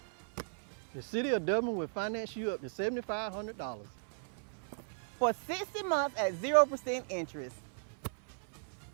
The City of Dublin will finance you up to $7,500. For 60 months at 0% interest.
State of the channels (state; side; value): silent; left; 53 dB below the other